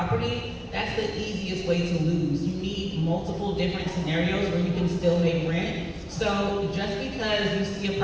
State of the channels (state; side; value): identical; both; correlation 1.00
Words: that's the easiest way to lose. You need multiple different scenarios where you can still make rent. So just because you see a